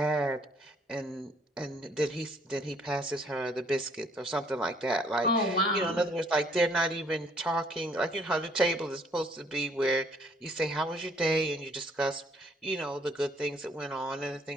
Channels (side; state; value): both; normal; correlation 0.63